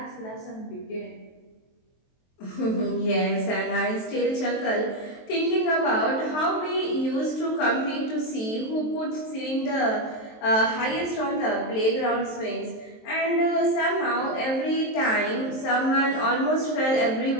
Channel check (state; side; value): late; right; 23 ms